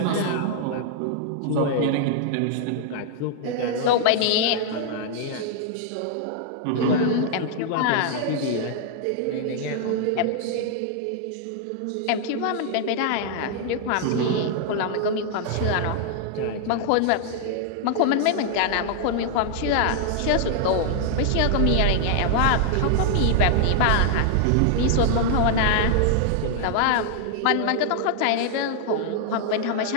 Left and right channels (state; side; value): different; both; correlation -0.01